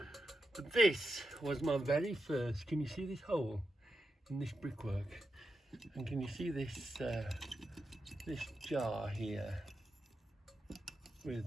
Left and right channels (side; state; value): both; normal; correlation 0.88